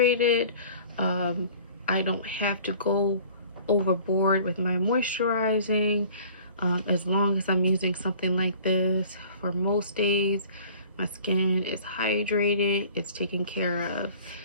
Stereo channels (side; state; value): both; inverted; correlation -0.48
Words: I don't have to go overboard with my moisturizing. As long as I'm using something like this for most days, my skin is hydrated, it's taken care of.